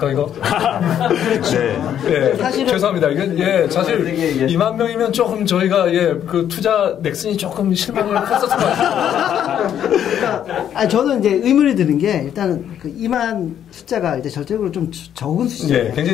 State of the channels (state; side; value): quieter; right; 9.8 dB